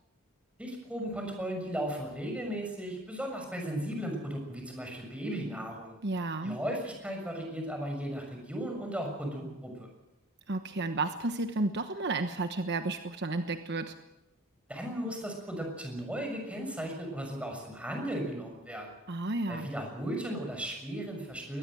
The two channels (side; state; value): both; normal; correlation 0.52